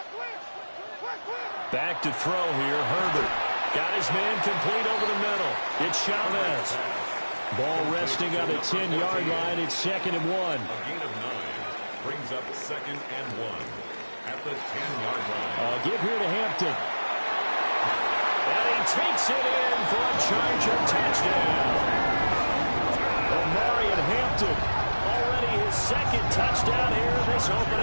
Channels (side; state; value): both; inverted; correlation -1.00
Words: Back to throw here, Herbert. Got his man complete over the middle. It's Chavez. Ball resting on the 10-yard line. It's 2nd and 1. A gain of 9 brings up 2nd and 1 at the 10-yard line. Give here to Hampton. And he takes it in for a Charger touchdown. Omarion Hampton, already his 2nd touchdown here this